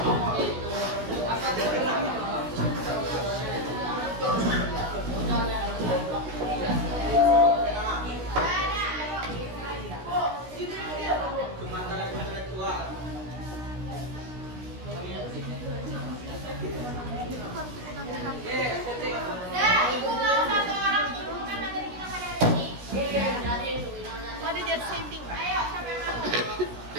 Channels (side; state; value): left; late; 16 ms